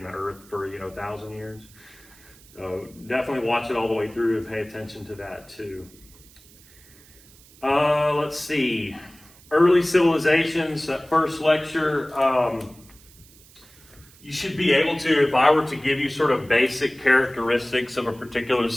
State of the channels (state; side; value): noise; right; hiss, 25 dB below the sound